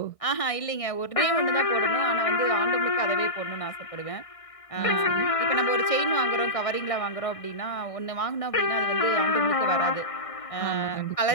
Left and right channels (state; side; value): late; right; 1.6 ms